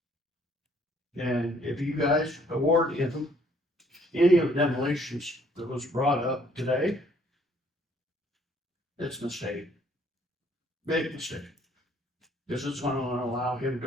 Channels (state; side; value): normal; both; correlation 0.63